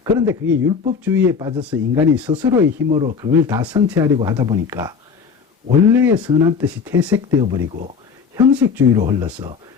그런데 그게 율법주의에 빠져서 인간이 스스로의 힘으로 그걸 다 성취하려고 하다 보니까 원래의 선한 뜻이 퇴색되어 버리고 형식주의로 흘러서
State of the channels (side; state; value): right; quieter; 6.0 dB